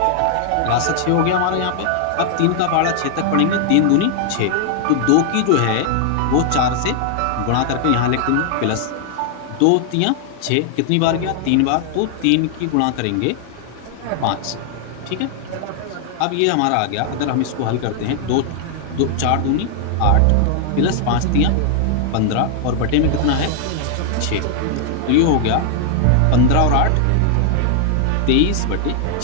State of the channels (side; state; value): both; different; correlation 0.00